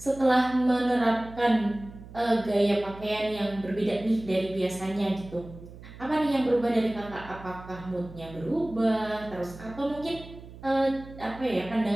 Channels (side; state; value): right; noise; hum, 17 dB below the sound